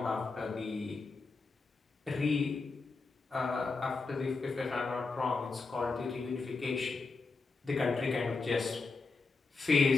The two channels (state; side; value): quieter; right; 4.1 dB